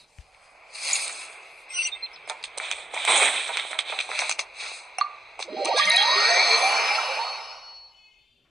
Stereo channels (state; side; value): normal; both; correlation 0.82